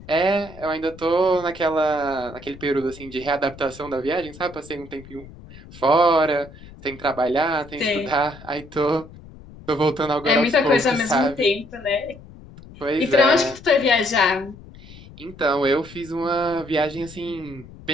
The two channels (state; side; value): noise; left; rumble, 19 dB below the sound